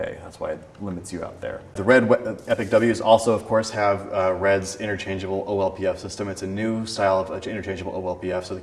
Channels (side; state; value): both; identical; correlation 1.00